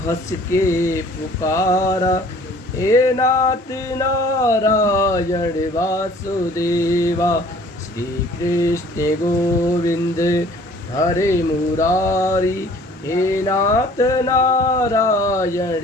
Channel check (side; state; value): both; normal; correlation 0.53